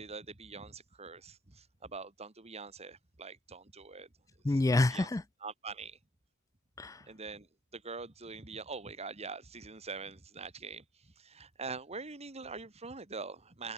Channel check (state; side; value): normal; both; correlation 0.66